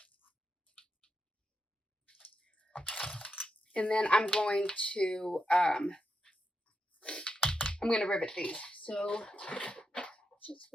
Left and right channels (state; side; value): normal; both; correlation 0.86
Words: And then I'm going to rivet these. So just